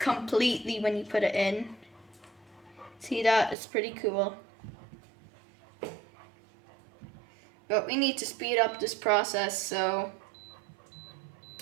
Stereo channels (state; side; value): drops out; left; at 3.6 s